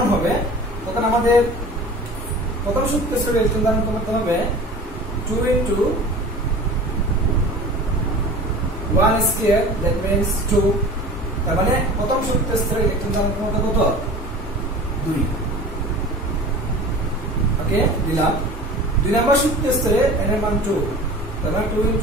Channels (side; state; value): both; normal; correlation 0.39